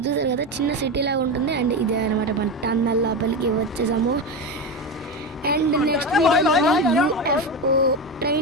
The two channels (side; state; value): both; normal; correlation 0.18